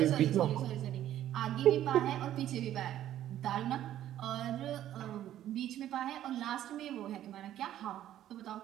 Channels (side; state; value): left; quieter; 12.1 dB